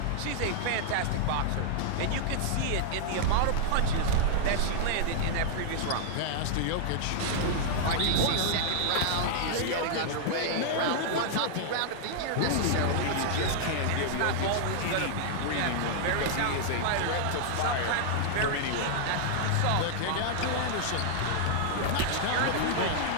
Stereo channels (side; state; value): both; different; correlation -0.01